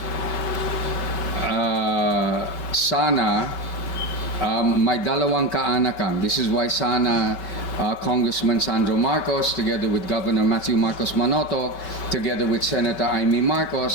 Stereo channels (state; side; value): late; right; 5.3 ms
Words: sana may dalawang kaanakan. This is why sana Congressman Sandro Marcos, together with Governor Matthew Marcos Manotoc, together with Senator Imee